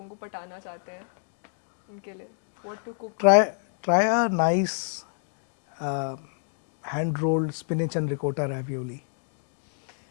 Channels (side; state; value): right; silent; digital silence